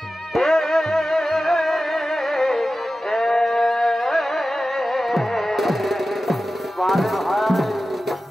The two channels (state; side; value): normal; both; correlation 0.94